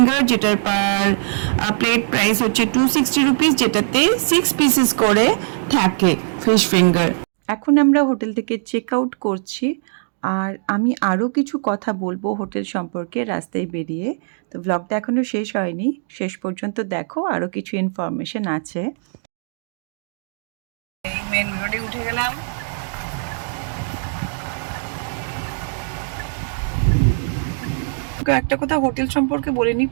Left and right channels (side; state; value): left; silent; digital silence